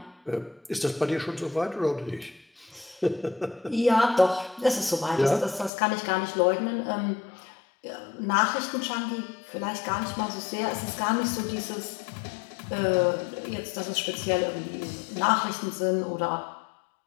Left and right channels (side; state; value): right; drops out; at 5.7 s